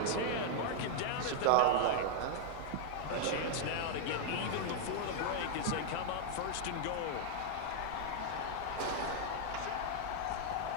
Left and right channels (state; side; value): different; both; correlation -0.01